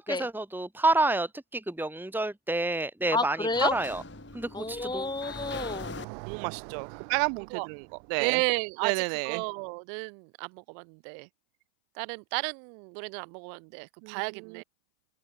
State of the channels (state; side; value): drops out; left; at 6.1 s